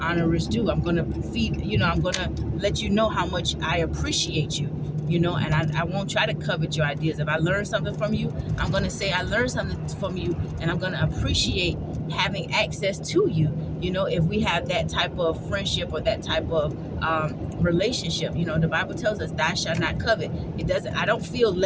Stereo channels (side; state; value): both; identical; correlation 1.00